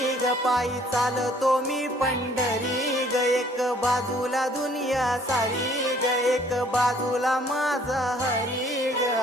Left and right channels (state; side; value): normal; both; correlation 0.59